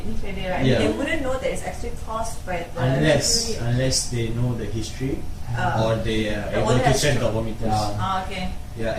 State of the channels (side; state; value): both; identical; correlation 1.00